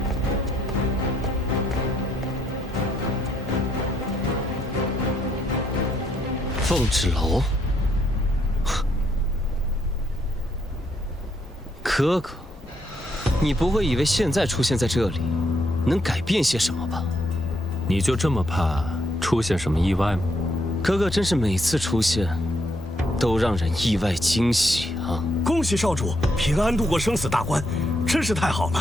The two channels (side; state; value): both; normal; correlation 0.74